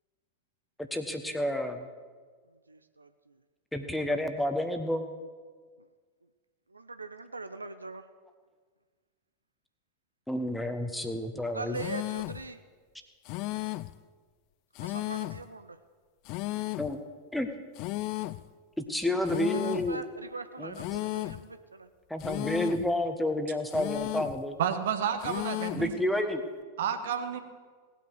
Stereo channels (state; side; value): normal; both; correlation 0.43